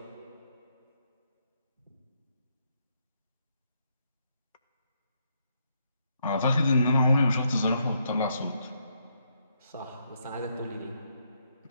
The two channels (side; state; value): both; inverted; correlation -0.77